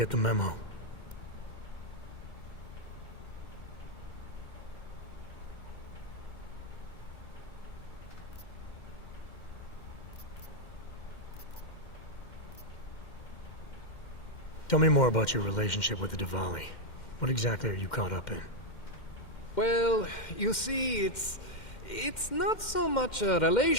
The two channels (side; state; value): right; late; 2.1 ms